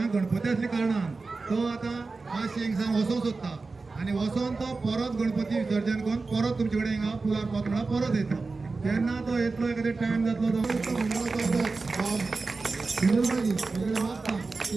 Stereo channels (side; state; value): left; quieter; 3.9 dB